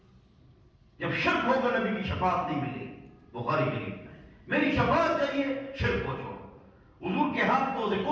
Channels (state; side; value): identical; both; correlation 1.00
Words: جب شرک ہوگا نبی کی شفاعت نہیں ملے گی۔ بخاری شریف میں میری شفاعت چاہیے، شرک کو چھوڑو۔ حضور کے ہاتھ کو